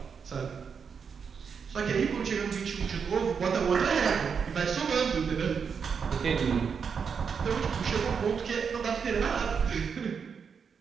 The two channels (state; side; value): quieter; left; 6.3 dB